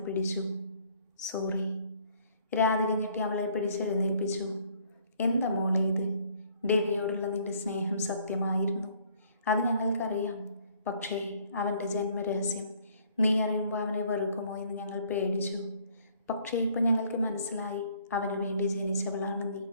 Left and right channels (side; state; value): both; inverted; correlation -0.60